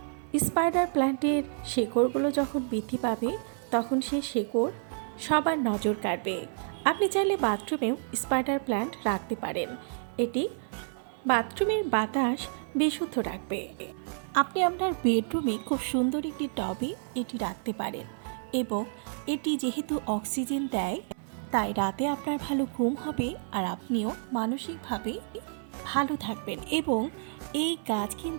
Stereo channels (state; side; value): silent; left; 58 dB below the other